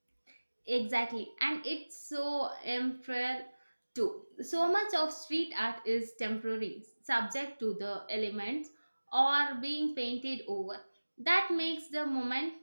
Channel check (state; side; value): inverted; both; correlation -1.00